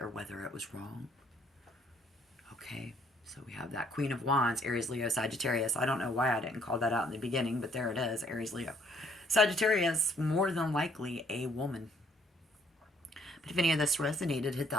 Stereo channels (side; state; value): both; normal; correlation 0.64